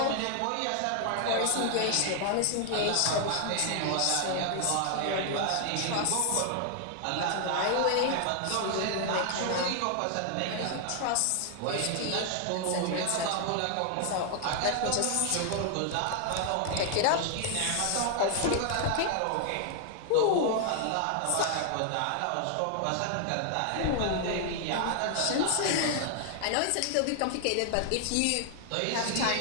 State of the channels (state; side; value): different; both; correlation 0.00